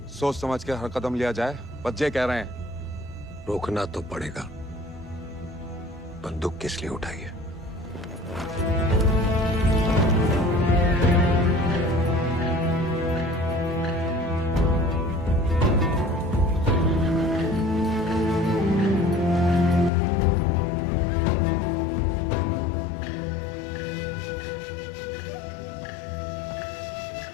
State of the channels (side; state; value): right; drops out; at 19.9 s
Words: सोच समझ के हर कदम लिया जाए, बच्चे कह रहे हैं। रोकना तो पड़ेगा। बंदूक किस लिए उठाई है?